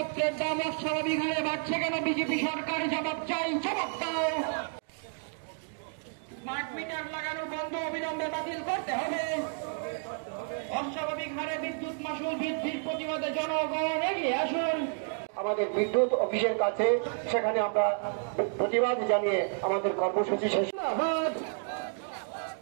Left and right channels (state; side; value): silent; left; 57 dB below the other